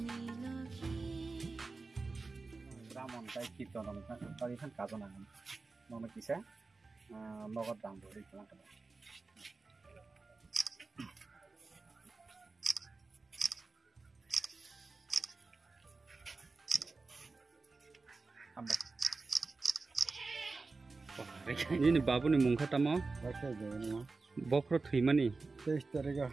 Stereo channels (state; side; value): quieter; left; 3.9 dB